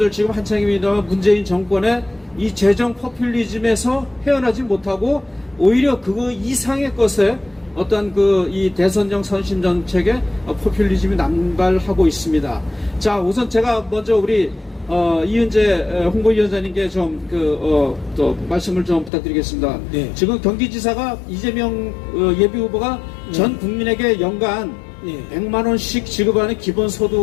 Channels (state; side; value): drops out; right; at 19.1 s